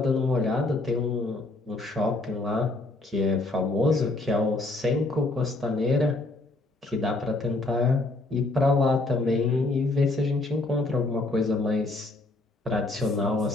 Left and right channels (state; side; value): quieter; right; 3.0 dB